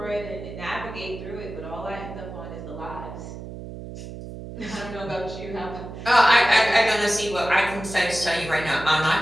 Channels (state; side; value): noise; right; hum, 11 dB below the sound